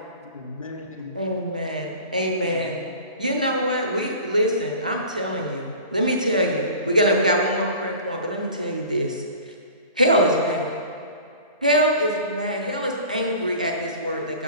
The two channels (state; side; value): inverted; both; correlation -0.41